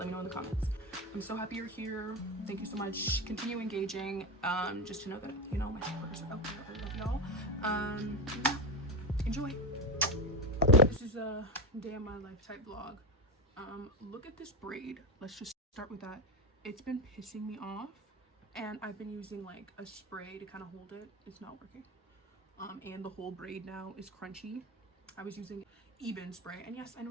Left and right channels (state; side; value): normal; both; correlation 0.15